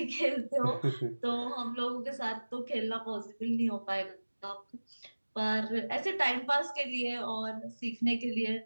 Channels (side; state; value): both; inverted; correlation -1.00